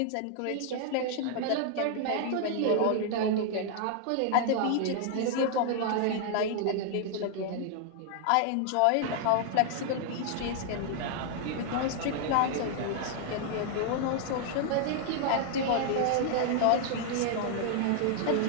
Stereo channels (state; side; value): different; both; correlation 0.00